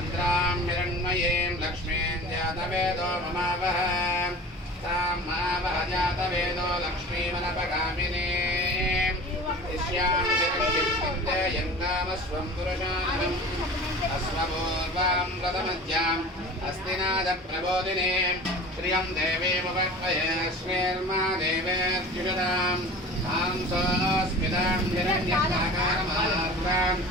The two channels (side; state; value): both; normal; correlation 0.38